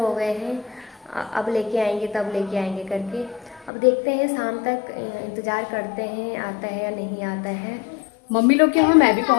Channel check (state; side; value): drops out; right; at 3.7 s